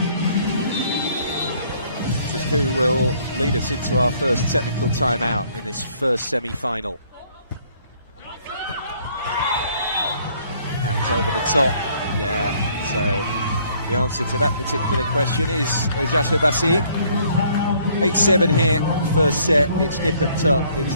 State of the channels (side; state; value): both; inverted; correlation -0.62